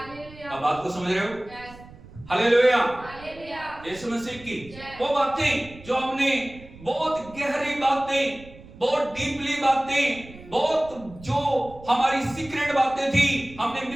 आप बात को समझ रहे हो? हालेलुया, यीशु मसीह की। वो बातें जो हमने बहुत गहरी बातें, बहुत डीपली बातें, बहुत जो हमारी सीक्रेट बातें थी, हमने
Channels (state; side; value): noise; right; rumble, 19 dB below the sound